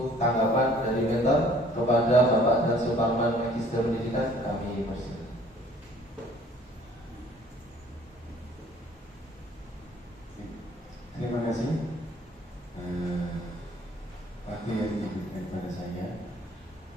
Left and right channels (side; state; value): both; normal; correlation 0.56